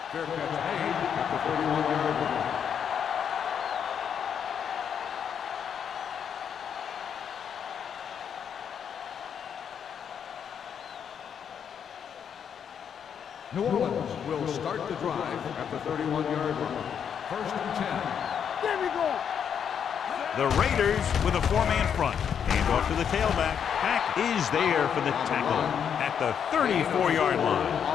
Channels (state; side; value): quieter; right; 7.9 dB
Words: Fair catch made at the 31-yard line. New Orleans will start the drive at the 31-yard line. First and 10. There we go. The Raiders with a four-man front. Hand off to the tailback. Pack is there for the tackle at the 34-yard